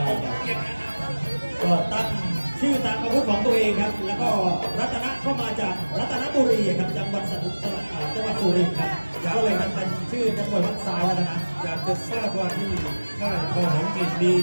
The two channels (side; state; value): both; inverted; correlation -1.00